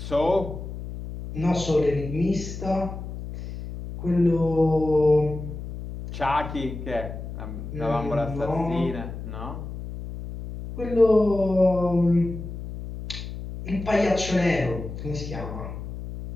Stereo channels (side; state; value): left; noise; hum, 9 dB below the sound